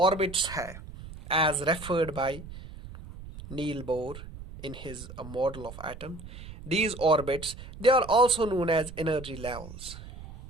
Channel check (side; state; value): right; noise; rumble, 14 dB below the sound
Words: है, as referred by Niels Bohr in his model of atom, these orbits, they are also known as energy levels.